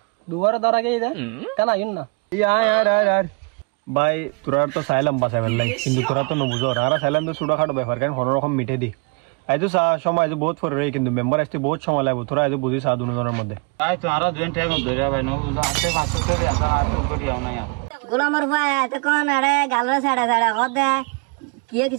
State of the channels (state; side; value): quieter; left; 32.0 dB